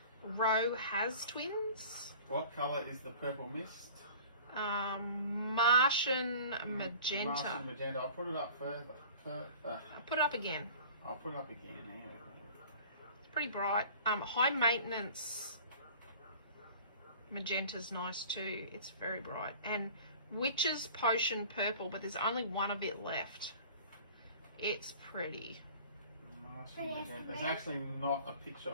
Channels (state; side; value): inverted; both; correlation -0.44